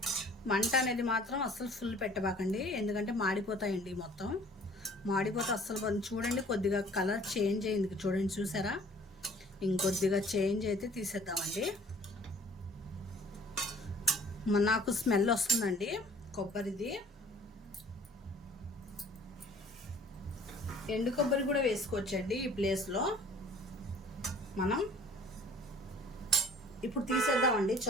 మంట అనేది మాత్రం అస్సలు ఫుల్ పెట్టబాకండి, ఎందుకంటే మాడిపోతాయండి. మొత్తం మాడిపోతే అస్సలు. చూడండి, కొద్దిగా కలర్ చేంజ్ అయింది చూడండి, చూసారా? ఇంకొద్దిగా చేంజ్ అయితే తీసేద్దామండి. నాకు స్మెల్ వస్తుందండి కొబ్బరిది. ఎండు కొబ్బరి కూడా వేసుకోవచ్చండి ఈ ప్లేస్లో. మనం ఇప్పుడు తీసేద్దామండి,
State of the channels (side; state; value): both; normal; correlation 0.52